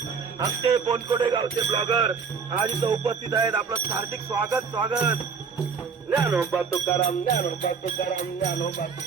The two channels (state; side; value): quieter; left; 5.9 dB